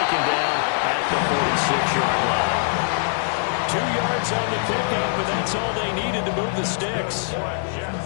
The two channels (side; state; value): right; silent; 59 dB below the other